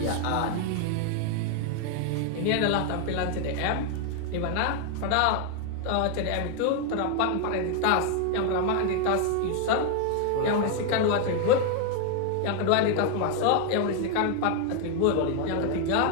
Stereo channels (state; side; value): different; both; correlation 0.00